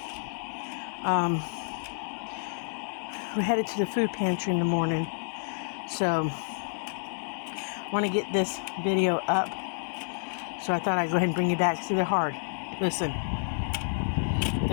We're headed to the food pantry in the morning. So I want to get this video up. So I thought I'd go ahead and bring you back. See, they're hard. Listen.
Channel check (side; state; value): right; silent; 58 dB below the other